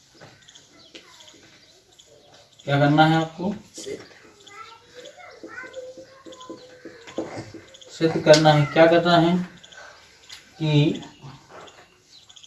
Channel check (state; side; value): identical; both; correlation 1.00